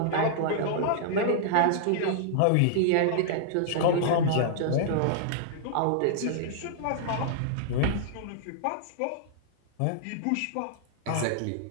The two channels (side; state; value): both; different; correlation -0.01